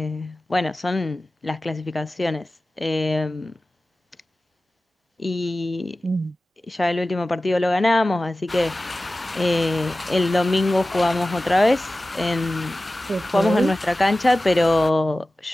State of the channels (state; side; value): normal; both; correlation 0.96